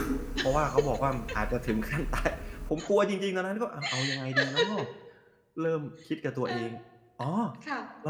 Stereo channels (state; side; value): identical; both; correlation 1.00